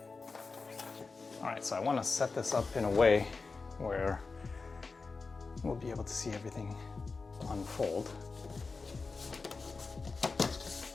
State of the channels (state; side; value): quieter; right; 4.2 dB